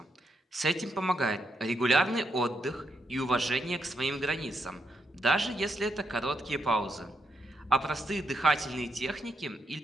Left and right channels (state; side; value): normal; both; correlation 0.81